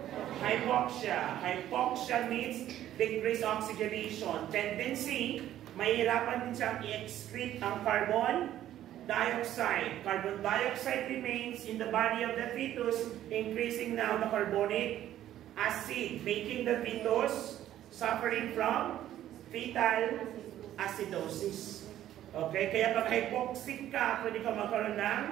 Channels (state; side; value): quieter; left; 12.4 dB